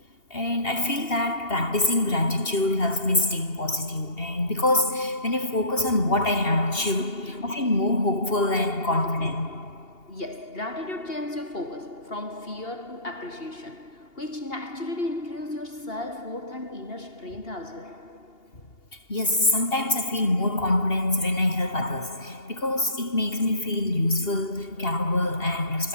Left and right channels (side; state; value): right; late; 2.8 ms